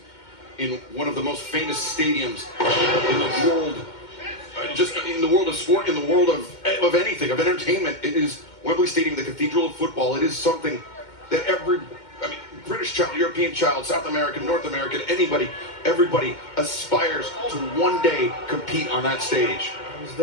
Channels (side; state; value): right; late; 2.1 ms